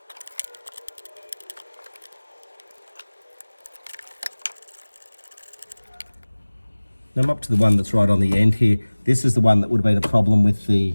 Now I'm up to the one that's right on the end here. This is the one that would have been a problem with the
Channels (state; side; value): inverted; both; correlation -1.00